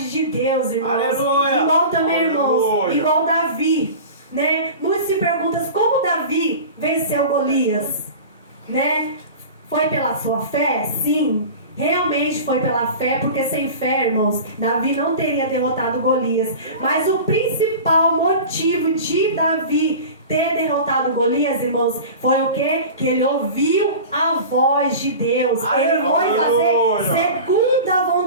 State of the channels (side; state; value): both; inverted; correlation -0.34